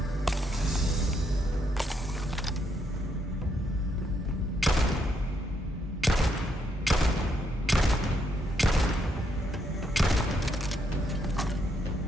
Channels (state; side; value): normal; both; correlation 0.76